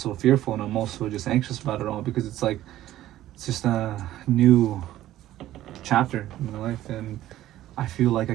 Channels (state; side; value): quieter; left; 14.0 dB